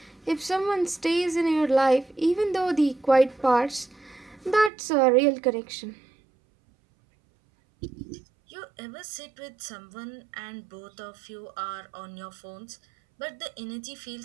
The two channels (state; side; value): drops out; left; at 4.7 s